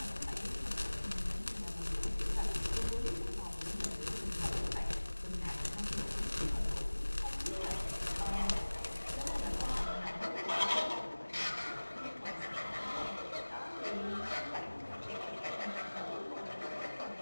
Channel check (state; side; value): inverted; both; correlation -1.00